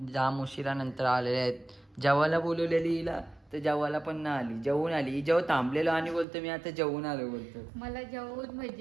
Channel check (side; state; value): left; drops out; at 6.2 s